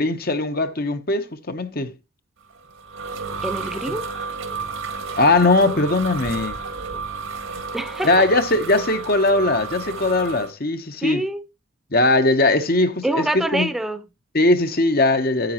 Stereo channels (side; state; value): both; normal; correlation 0.09